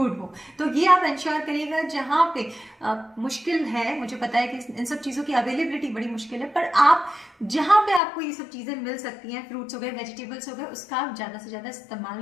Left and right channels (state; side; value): drops out; right; at 8.0 s